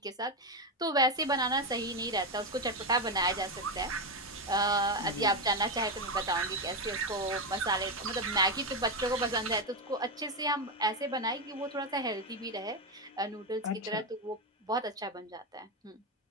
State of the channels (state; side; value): normal; both; correlation 0.10